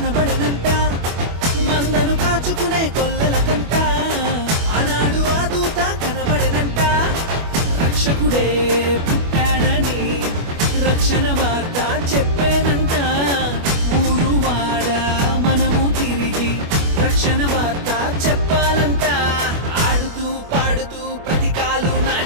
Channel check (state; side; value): late; left; 25 ms